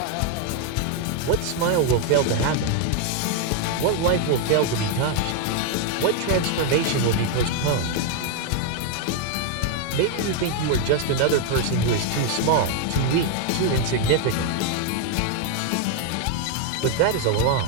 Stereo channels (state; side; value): different; both; correlation 0.01